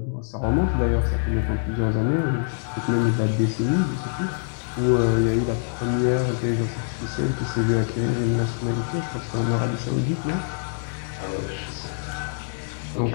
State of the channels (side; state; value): right; silent; 62 dB below the other